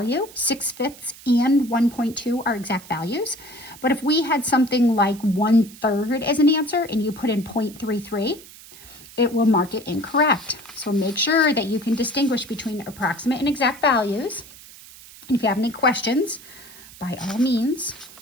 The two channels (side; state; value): right; noise; hiss, 19 dB below the sound